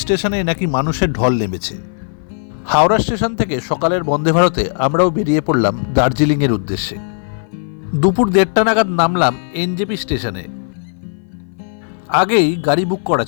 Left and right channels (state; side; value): silent; right; 58 dB below the other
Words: স্টেশনে নাকি মানুষের ঢল নেমেছে। হাওড়া স্টেশন থেকে সকালের বন্দে ভারতে আমরাও বেরিয়ে পড়লাম দার্জিলিংয়ের উদ্দেশ্যে। দুপুর 1:30 নাগাদ নামলাম এনজেপি স্টেশনে। আগেই গাড়ি বুক করা